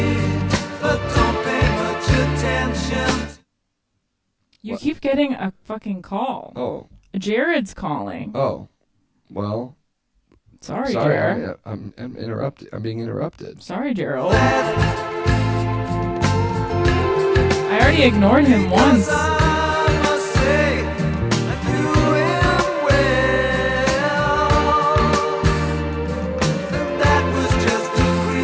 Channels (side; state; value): both; identical; correlation 1.00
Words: You keep getting a fucking call. Oh. Jared's calling. Oh. Well. Sorry, Jared. I'm interrupted. I'm being interrupted. Sorry, Gerald. I already ignored him once.